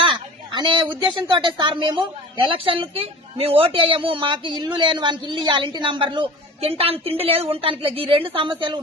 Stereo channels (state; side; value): normal; both; correlation 0.39